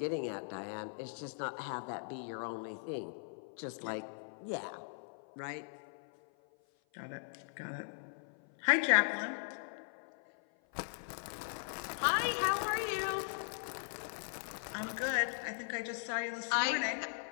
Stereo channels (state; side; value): silent; right; 52 dB below the other